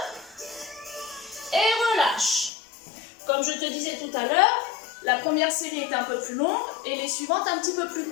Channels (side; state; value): right; drops out; at 2.5 s